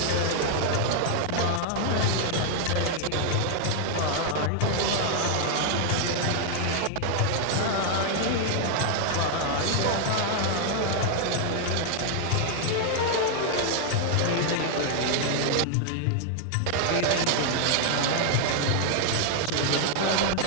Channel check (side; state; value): both; different; correlation 0.00